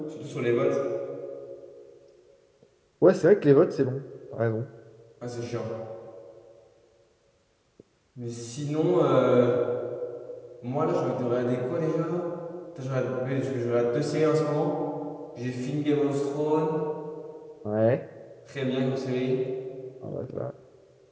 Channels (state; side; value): identical; both; correlation 1.00